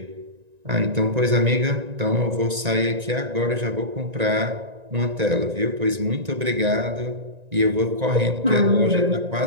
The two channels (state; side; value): late; left; 1.9 ms